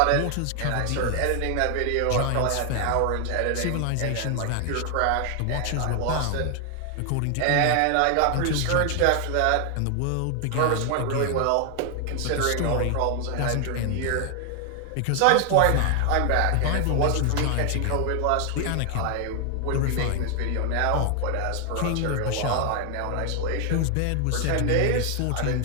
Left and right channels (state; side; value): different; both; correlation 0.00